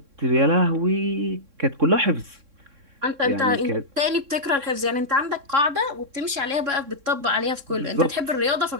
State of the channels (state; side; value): late; left; 3.6 ms